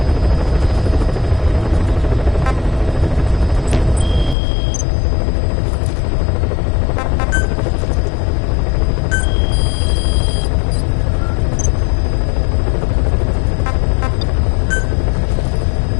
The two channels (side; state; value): right; drops out; at 4.4 s